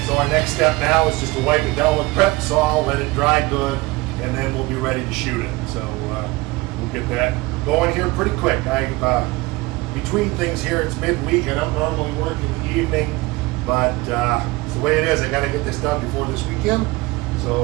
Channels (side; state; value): left; quieter; 21.7 dB